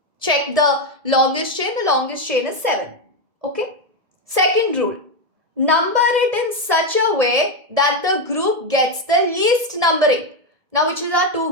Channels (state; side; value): late; left; 1.7 ms